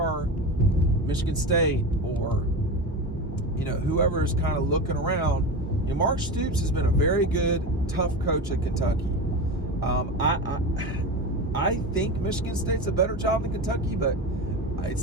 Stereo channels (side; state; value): both; normal; correlation 0.24